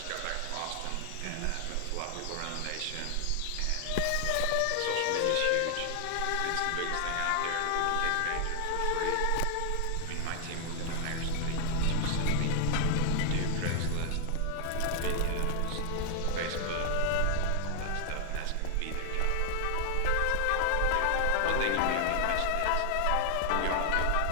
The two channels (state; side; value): different; both; correlation 0.00